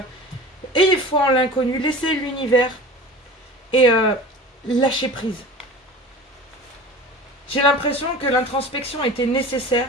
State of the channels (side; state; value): both; normal; correlation 0.37